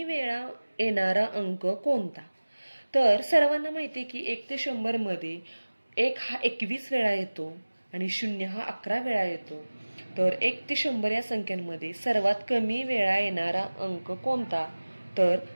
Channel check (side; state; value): both; inverted; correlation -1.00